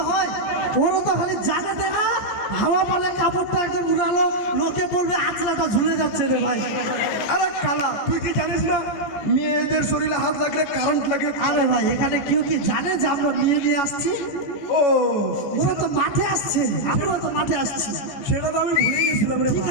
হয়। ওরা তো খালি জানে দে না, হাওয়া পালে কাপড়টা একদম উড়ালো, লোকে বলবে আঁচলাটা ঝুলে যাচ্ছে রে ভাই। আরে কালা, তুই কি জানিস না মেয়েদের শরীরে হাত লাগলে কারেন্ট লাগে? আরে ভাই, এখানে কেউ কি জানে যে আমরা মেয়ে নিয়ে আসছি? ও, ওরা তো মাঠে আসছে, আমরা তো মাঠে আসছি। সেটা তো আমি ভুলে গেছিলাম রে ঠিক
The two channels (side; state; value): right; late; 14 ms